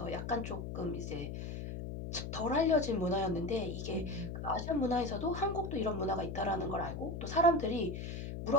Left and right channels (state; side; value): noise; left; hum, 6 dB below the sound